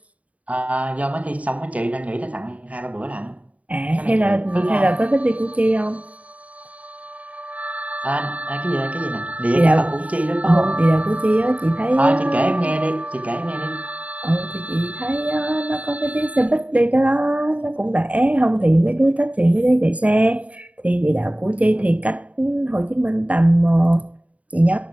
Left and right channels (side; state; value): left; late; 0.068 ms